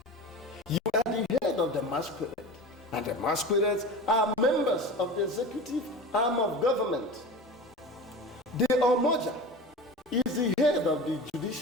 You are the head of the masquerade, and the masquerades are members of the executive arm of government. The Omoja is the head of the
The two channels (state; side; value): normal; both; correlation 0.33